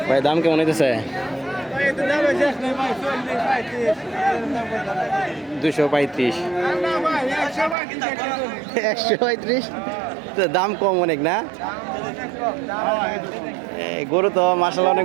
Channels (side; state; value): left; drops out; at 7.8 s